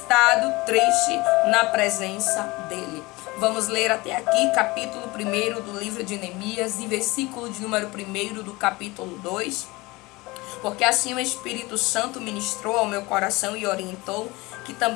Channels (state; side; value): quieter; right; 22.5 dB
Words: triste na presença dele. Vamos ler até aqui, capítulo 1 do livro de Neemias e versículo de número 1 do capítulo 2. Porque assim o Espírito Santo ministrou ao meu coração e orientou que